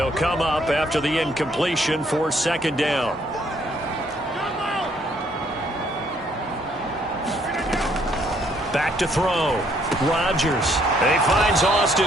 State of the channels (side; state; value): both; normal; correlation 0.67